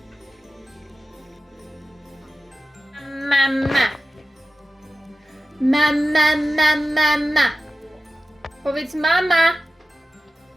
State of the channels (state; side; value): normal; both; correlation 0.95